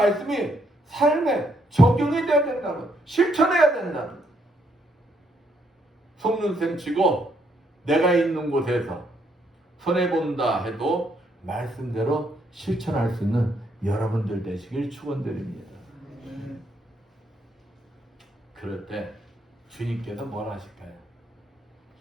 삶에 적용이 돼야 된다는 거예요. 실천해야 된다는 거예요. 속눈썹 치고 내가 있는 곳에서 손해본다 해도 말씀대로 실천할 수 있는 여러분들 되시길 축원드립니다. 그럴 때 주님께서 뭘 하실까요?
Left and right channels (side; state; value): both; normal; correlation 0.73